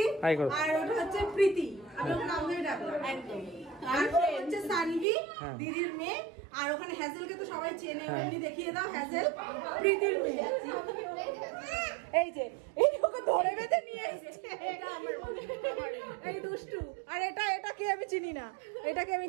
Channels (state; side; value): drops out; left; at 5.1 s